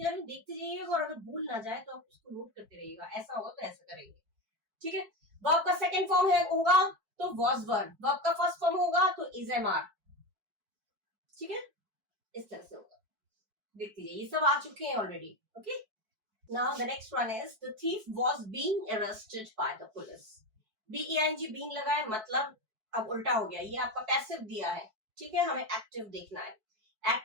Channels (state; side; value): late; left; 4.6 ms